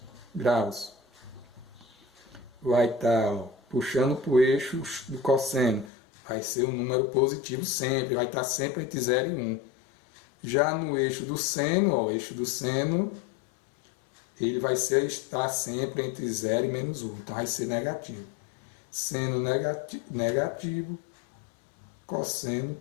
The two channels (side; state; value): right; drops out; at 5.9 s